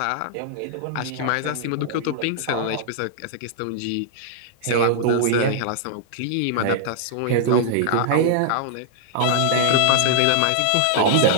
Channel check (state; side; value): different; both; correlation -0.01